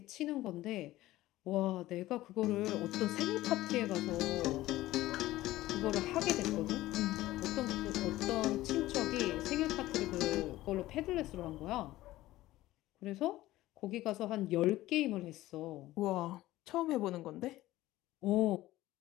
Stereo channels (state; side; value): quieter; right; 16.4 dB